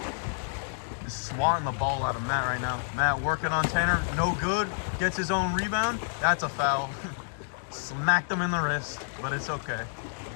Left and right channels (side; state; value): right; silent; 59 dB below the other